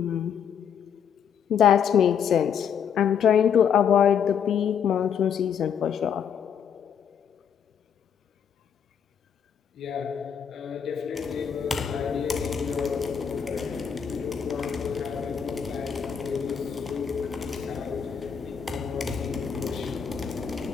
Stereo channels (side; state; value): right; quieter; 7.7 dB